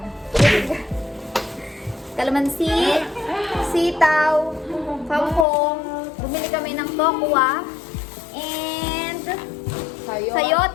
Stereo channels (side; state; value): right; drops out; at 5.5 s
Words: Kalamansi, sitaw, kangkong, ng tokwa. And